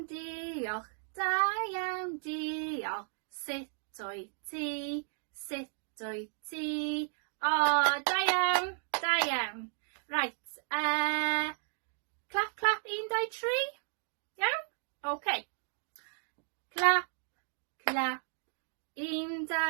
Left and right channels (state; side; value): silent; left; 55 dB below the other